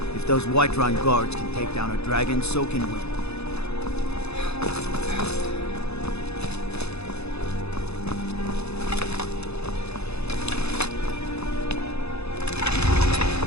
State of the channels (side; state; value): right; late; 0.79 ms